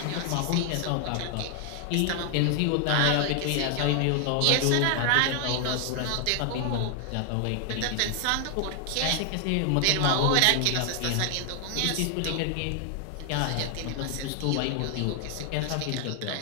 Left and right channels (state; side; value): different; both; correlation 0.00